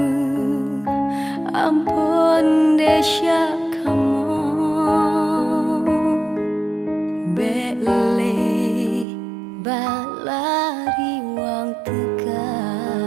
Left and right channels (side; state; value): left; drops out; at 9.1 s